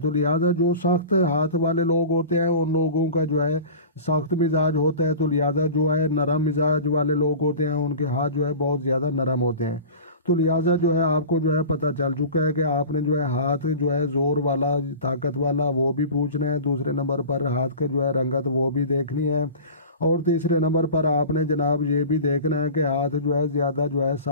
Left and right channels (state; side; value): inverted; both; correlation -0.36